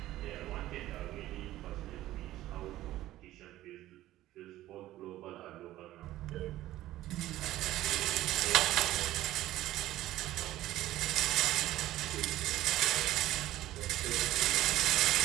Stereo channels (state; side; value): quieter; left; 15.0 dB